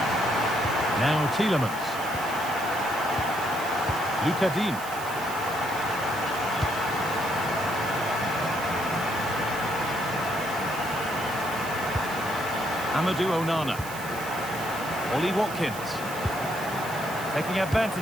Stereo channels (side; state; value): right; noise; hiss, 13 dB below the sound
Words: Now Tielemans. Luca Dean. Amadou Onana. Ollie Watkins. Taking